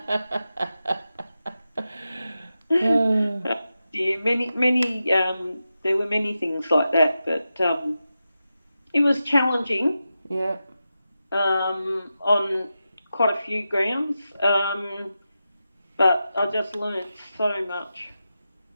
Many. There were many things like that, but it was challenging. Yeah. On quite a few grounds, but I just learnt so much.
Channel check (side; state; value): both; inverted; correlation -0.91